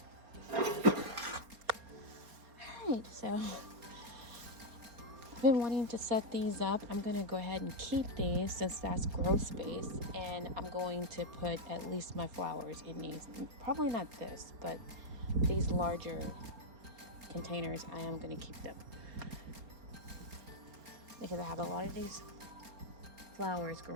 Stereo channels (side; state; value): left; late; 4.3 ms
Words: Alright, so I've been wanting to set these up. I'm gonna go ahead and keep these since that's grow space, and I'm going to put at least my flowers in these. Probably not this, but these larger containers, I am gonna keep them because I have a lot of these flowers